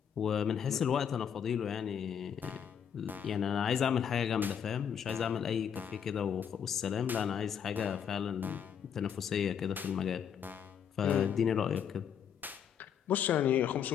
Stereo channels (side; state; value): right; quieter; 8.1 dB